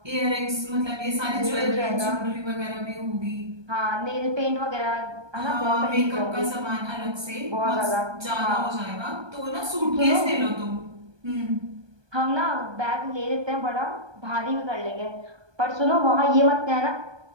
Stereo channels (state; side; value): late; left; 1.2 ms